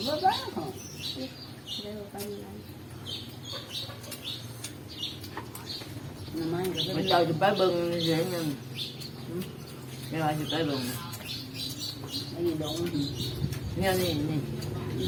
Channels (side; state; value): both; identical; correlation 1.00